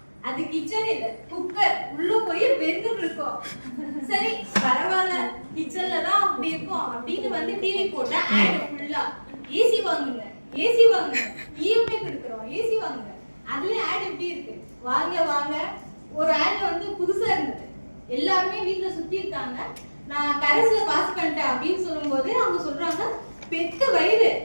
அது கிச்சன் இல்ல, குக்கர். உள்ள போய் வெந்துட்டு இருக்கோம். சரி பரவாயில்ல, கிச்சன்ல தான் அப்படி இருக்கும் அப்படின்னு வந்து டிவி போட்டா ஆட் ஃபுல்லா ஏசி வாங்குங்க, ஏசி வாங்குங்க, இஎம்ஐ கொடுக்குறோம், ஏசி வாங்குங்க. அதுல ஆட் எப்படி இருக்கு? வாங்க வாங்க. ஒரு ஆட் வந்து புதுசா இருந்தது. எல்லாருமே வீட்டுல சுத்தி இருக்காங்க. நான் கரஸ்ல பாஸ் பண்ணிட்டேன் அப்படின்னு சொல்லும்போது அவங்க சொல்றாங்க, பெத்த வயிறு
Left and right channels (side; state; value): both; inverted; correlation -1.00